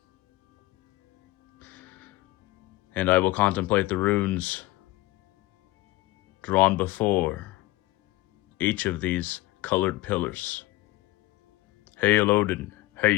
And I will contemplate the runes drawn before each of these colored pillars. Hail Odin,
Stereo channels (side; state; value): right; quieter; 18.9 dB